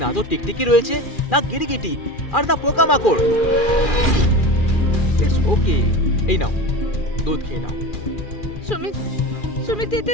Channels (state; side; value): late; right; 2.4 ms